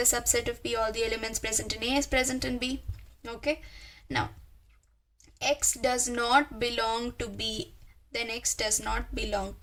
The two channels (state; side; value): identical; both; correlation 1.00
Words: subset of B. All the elements present in A is present in B. Okay. Now, X does not belong to B, then X does not belong